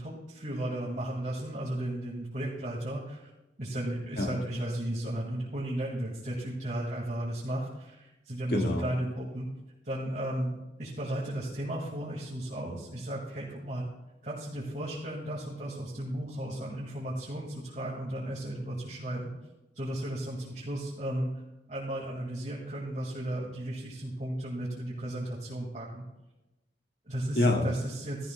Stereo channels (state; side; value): normal; both; correlation 0.76